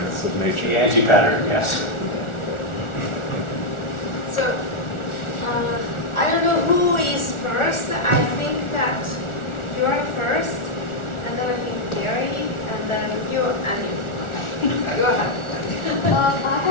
of nature. The anti-pattern, yes. So, I don't know who is first. I think that you are first, and then I think Gary, and then you, and you. Okay, go ahead. I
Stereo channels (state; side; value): late; right; 1.4 ms